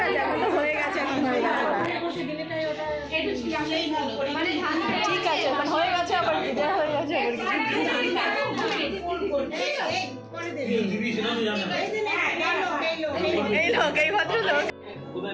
আছে, এখন তো হয়ে গেছে, এখন হয়ে গেছে। ঠিক আছে, এখন হয়ে গেছে, আবার বিদায় হয়ে গেছে, এই লোক, এই ভদ্রলোক।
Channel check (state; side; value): identical; both; correlation 1.00